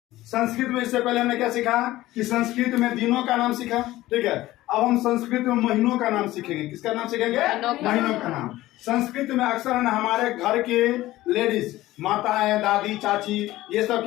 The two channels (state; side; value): quieter; right; 16.5 dB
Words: संस्कृत में इससे पहले हमने क्या सीखा कि संस्कृत में दिनों का नाम सीखा, ठीक है। अब हम संस्कृत में महीनों का नाम सीखेंगे। किसका नाम सीखेंगे? महीनों का नाम। संस्कृत में अक्सर है ना हमारे घर के लेडीज, माताएं, दादी, चाची, ये सब